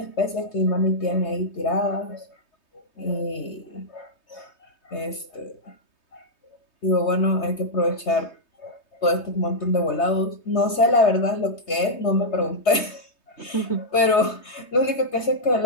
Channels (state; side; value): late; right; 3.2 ms